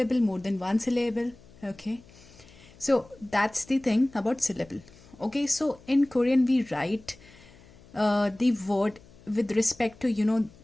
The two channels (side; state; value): left; noise; hum, 24 dB below the sound